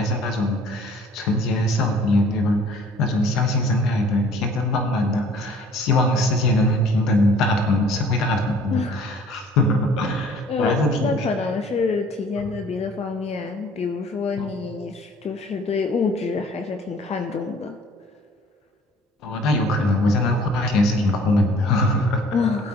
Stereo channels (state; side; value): normal; both; correlation 0.53